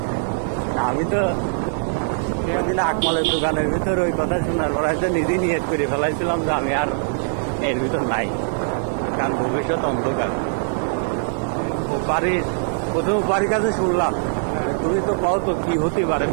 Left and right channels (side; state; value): left; silent; digital silence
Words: আমি তো সেদিন আকমালের দোকানের ভিতর ওই কথা শোনার পর হয়তো নিজেই নিয়ত করে ফেলাইছিলাম যে আমি আর এর ভিতর নাই, কারণ ভবিষ্যৎ অন্ধকার। ও বাড়ির প্রথম বাড়ির কাছে শুনলাম তুমি তো পাও তো কি হতে পারে